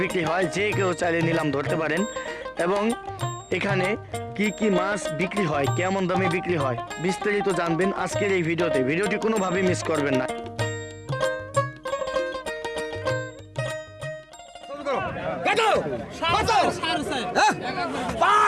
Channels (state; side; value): identical; both; correlation 1.00